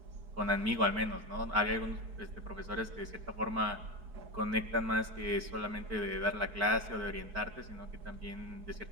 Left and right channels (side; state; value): left; late; 4.4 ms